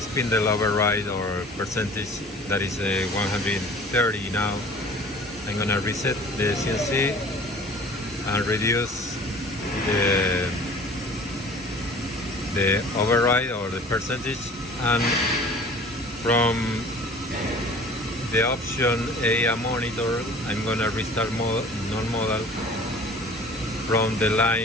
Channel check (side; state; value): both; normal; correlation 0.46